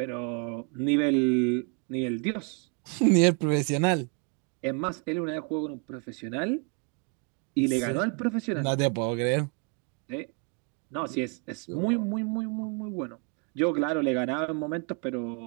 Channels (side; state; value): left; quieter; 35.4 dB